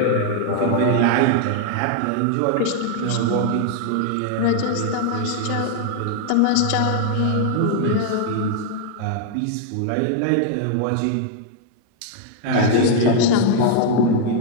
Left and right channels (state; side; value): different; both; correlation 0.00